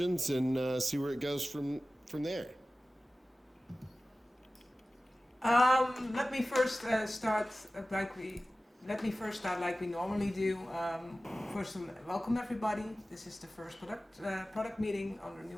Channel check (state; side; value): normal; both; correlation 0.96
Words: and see where it goes from there. Let me first start like we normally do. First, welcome everybody. This is the first product meeting under